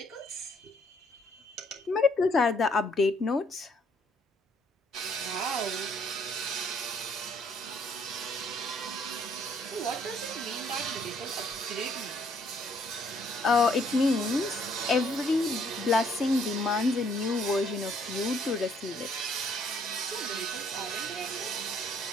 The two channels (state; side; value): normal; both; correlation 0.66